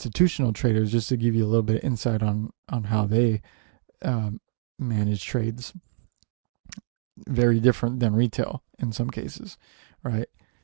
traders, just to give you a little bit of insight on how they manage trades, very different than retail in some cases, right?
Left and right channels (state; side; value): silent; left; digital silence